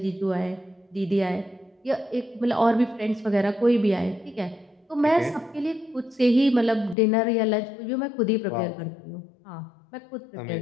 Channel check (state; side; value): drops out; right; at 7.0 s